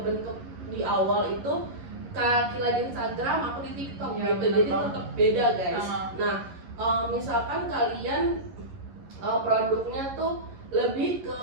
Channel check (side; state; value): left; late; 11 ms